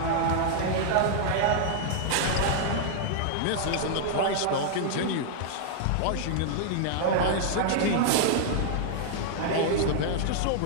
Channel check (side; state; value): both; different; correlation -0.01